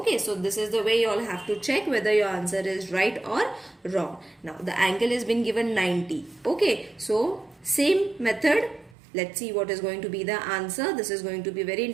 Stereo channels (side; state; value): left; drops out; at 9.0 s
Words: so this is the way you all have to check whether your answer is right or wrong. Now the angle has been given 90. Okay, so same method. Let's see what is going to be the answer. This is going to be very